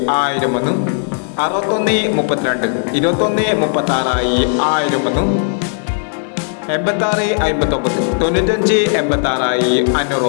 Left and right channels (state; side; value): silent; right; digital silence